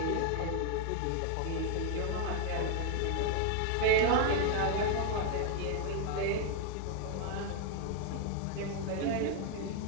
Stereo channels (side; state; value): both; different; correlation 0.00